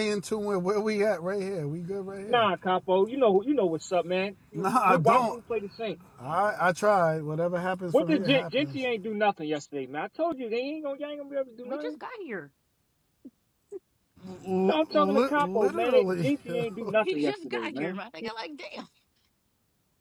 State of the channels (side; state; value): both; identical; correlation 1.00